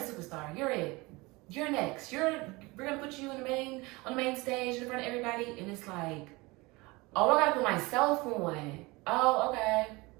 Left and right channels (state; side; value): quieter; left; 23.6 dB